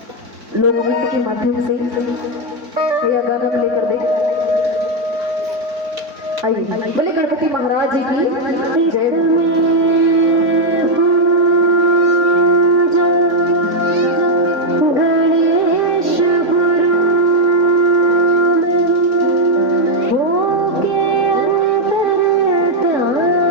लोक नृत्य के माध्यम से या गाना प्ले कर दे। आइए बोले गणपति महाराज जी की जय।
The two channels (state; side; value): late; left; 3.6 ms